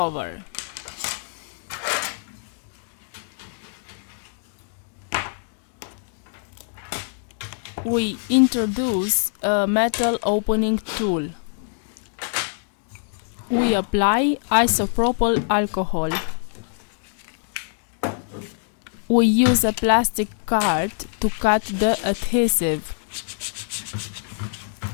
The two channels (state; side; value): silent; right; digital silence